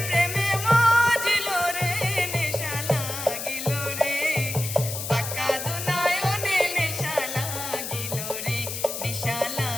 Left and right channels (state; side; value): noise; left; hiss, 6 dB below the sound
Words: প্রেমে মজিল রে নেশা লাগিল রে বাঁকা দুনয়নে নেশা লাগিল রে নেশা